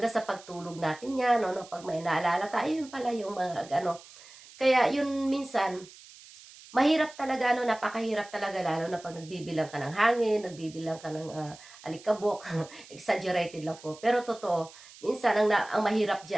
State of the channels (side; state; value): right; noise; hiss, 20 dB below the sound